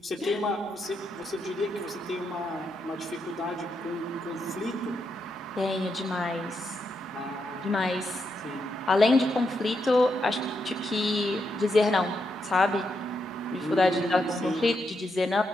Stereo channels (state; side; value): normal; both; correlation 0.82